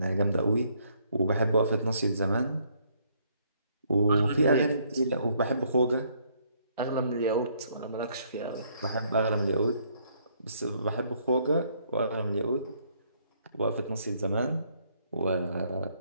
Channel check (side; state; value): both; inverted; correlation -0.68